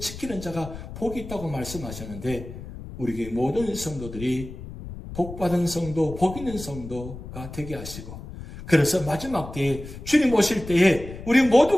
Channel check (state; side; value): noise; left; rumble, 12 dB below the sound